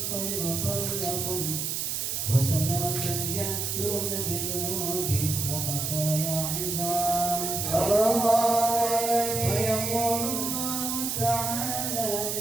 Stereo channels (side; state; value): right; noise; hiss, 1 dB below the sound